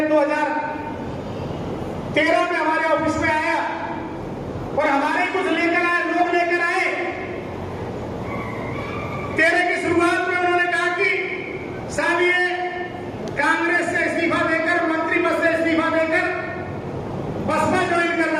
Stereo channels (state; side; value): identical; both; correlation 1.00